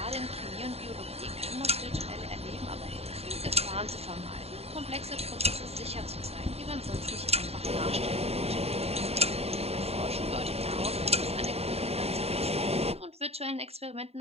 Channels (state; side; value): late; left; 0.30 ms